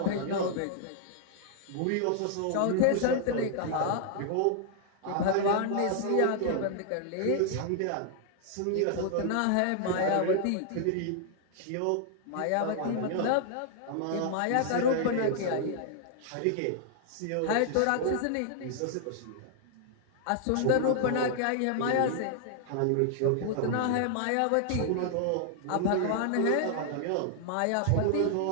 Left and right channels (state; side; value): different; both; correlation -0.01